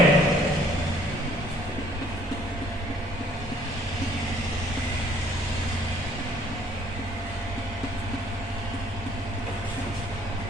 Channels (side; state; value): both; normal; correlation 0.60